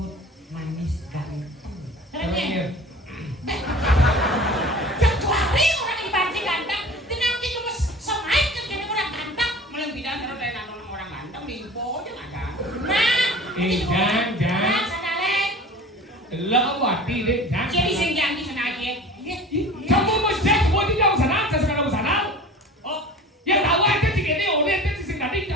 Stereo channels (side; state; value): both; normal; correlation 0.40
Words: manis, ganteng. Caranya. Kecuali orang dibanting ganteng, tenang kita mas semain kan jadi orang ganteng. Malah bidan kalau dari nonton orang ganteng di ibu aja nggak ada. Nah, jangan. sadalen. Lỡ wati deh, jangan. Jadi senjang di sana aja. Kamu mau cek buat di jauh sana, saya sekarang sana. Oh, Yang tahu aja sih ini, udah itu sih tadi